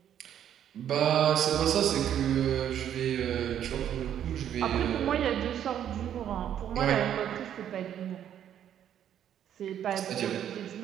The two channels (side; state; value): left; quieter; 10.0 dB